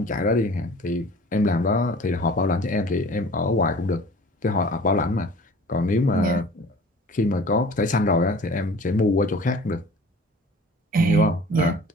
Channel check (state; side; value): normal; both; correlation 0.46